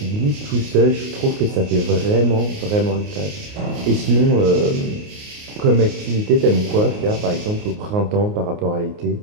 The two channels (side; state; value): left; late; 29 ms